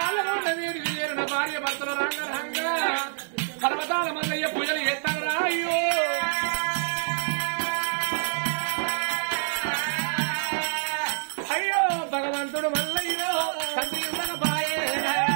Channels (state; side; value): silent; left; digital silence